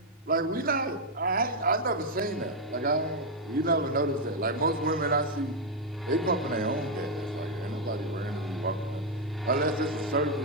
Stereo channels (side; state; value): both; normal; correlation 0.01